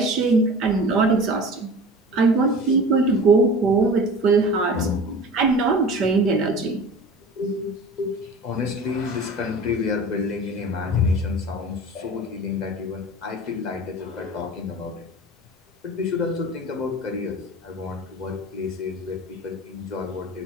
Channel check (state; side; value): normal; both; correlation 0.38